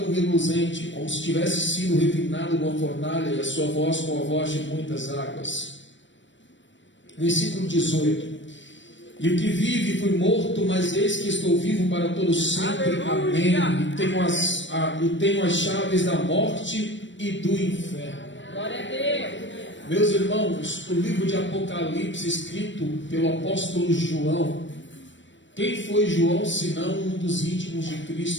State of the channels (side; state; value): right; late; 0.54 ms